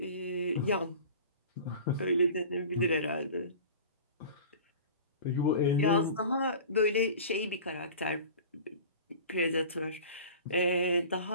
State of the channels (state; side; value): inverted; both; correlation -0.39